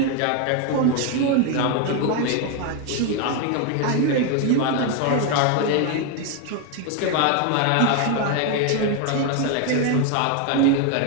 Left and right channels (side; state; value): both; different; correlation 0.01